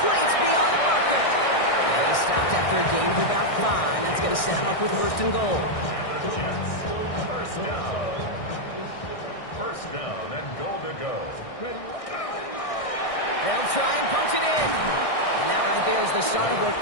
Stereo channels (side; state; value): right; late; 1.6 ms